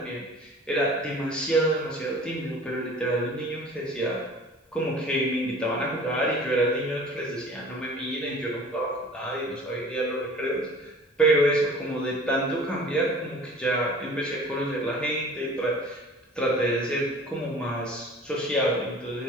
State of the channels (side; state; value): both; normal; correlation 0.45